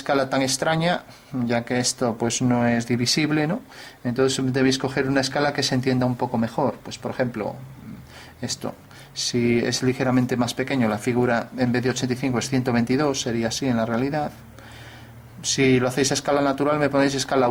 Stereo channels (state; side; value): identical; both; correlation 1.00